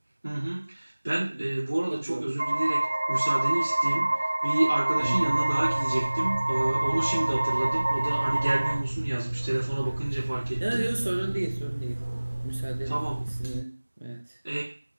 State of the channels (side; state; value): both; inverted; correlation -1.00